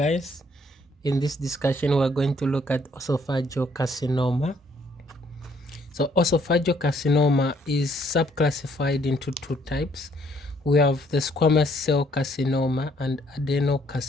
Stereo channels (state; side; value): normal; both; correlation 0.66